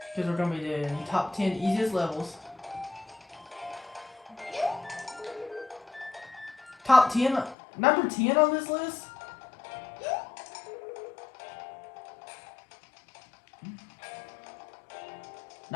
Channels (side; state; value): right; drops out; at 7.6 s